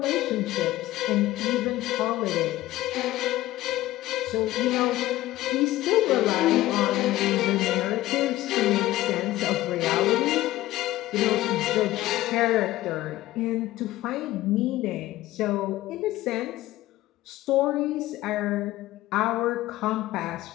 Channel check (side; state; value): right; quieter; 16.0 dB